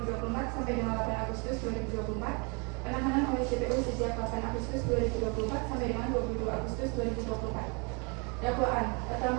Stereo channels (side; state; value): left; quieter; 32.7 dB